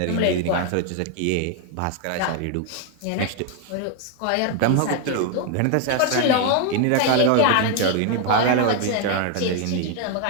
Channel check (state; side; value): different; both; correlation 0.00